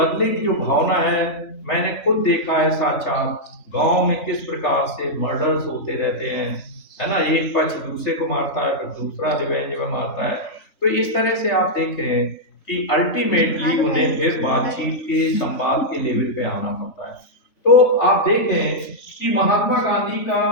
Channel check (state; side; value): late; right; 3.5 ms